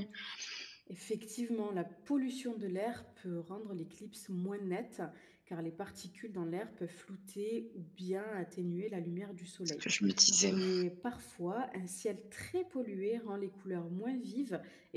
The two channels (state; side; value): identical; both; correlation 1.00